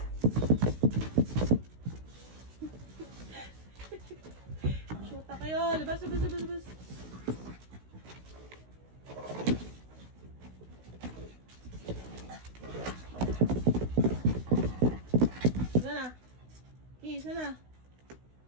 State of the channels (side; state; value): left; late; 16 ms